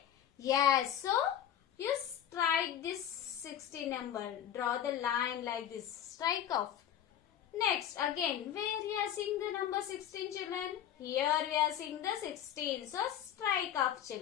Yes. So you strike this 16 number. Draw the line like this. Strike off. Next, again, where we are seeing the number 16 children? Here we are seeing the 16. So, strike off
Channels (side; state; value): right; quieter; 10.3 dB